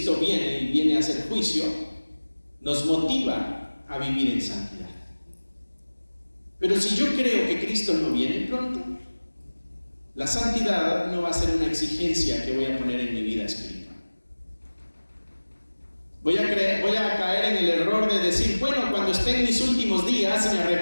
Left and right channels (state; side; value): inverted; both; correlation -1.00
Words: viene y viene a hacer juicio, nos motiva a vivir en santidad. Pero si yo creo que Cristo no viene pronto, la santidad no va a ser una exigencia que voy a poner en mi vida espiritual. Voy a caer en el error de decir, bueno, cuando esté en mis últimos días me